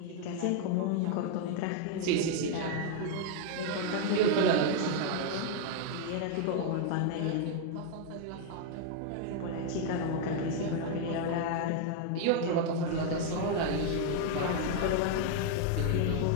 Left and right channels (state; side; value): different; both; correlation 0.00